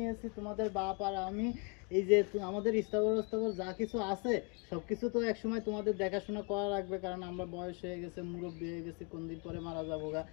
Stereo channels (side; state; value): right; quieter; 34.3 dB